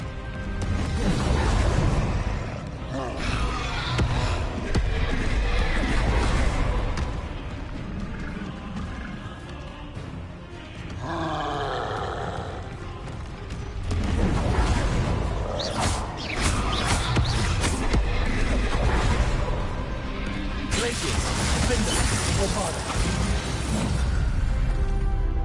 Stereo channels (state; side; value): identical; both; correlation 1.00